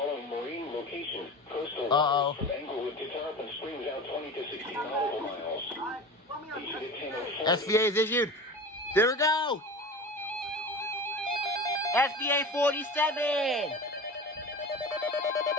marine locations. Coastal Uh-oh. waters from Englewood to Tarpon Springs out 20 to 60 nautical miles. Issued at 10:04. SBA is issued. There we go. SBA 47.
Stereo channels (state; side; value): normal; both; correlation 0.33